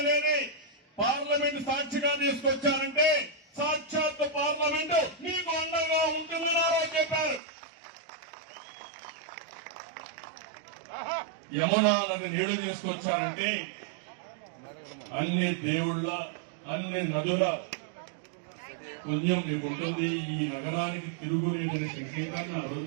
అనేది పార్లమెంట్ సాక్షిగా తీసుకొచ్చారంటే సాక్షాత్ పార్లమెంటు మీకు అండగా ఉంటుందని ఆ రోజు చెప్పారు. యమునా నది నీళ్లు తీసుకొచ్చారంటే అన్ని దేవుళ్ళ, అన్ని నదుల పుణ్యం మీకు ఉంటుంది. ఈ నగరానికి తిరుగులేని సంకేతాన్ని ఆ రోజు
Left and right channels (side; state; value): left; drops out; at 7.4 s